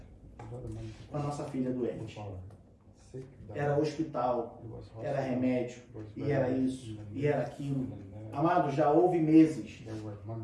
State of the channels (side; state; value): both; identical; correlation 1.00